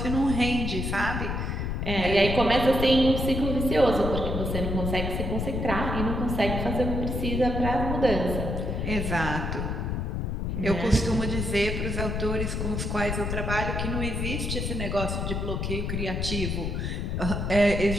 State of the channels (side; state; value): left; noise; rumble, 2 dB below the sound